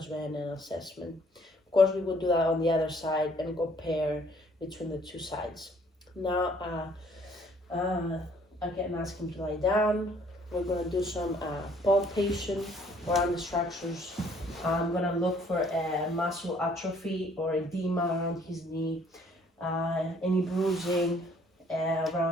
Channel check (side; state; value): both; normal; correlation 0.61